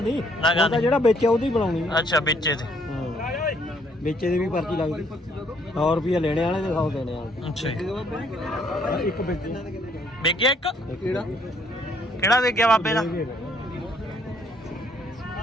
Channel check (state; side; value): normal; both; correlation 0.66